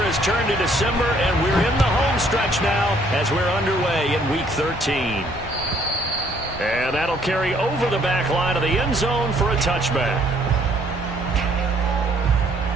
turned to December, and we're in the home stretch now as we're underway in Week 13. And that'll carry over the back line of the end zone for a touchback.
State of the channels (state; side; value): normal; both; correlation 0.64